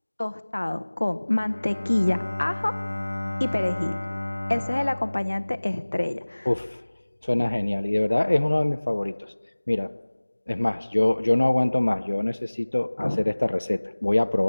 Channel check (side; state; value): both; inverted; correlation -1.00